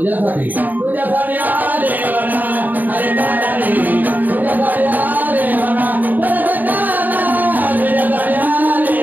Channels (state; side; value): late; left; 0.086 ms